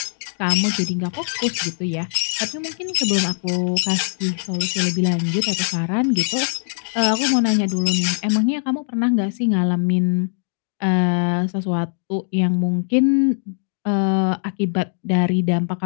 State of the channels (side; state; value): right; silent; 65 dB below the other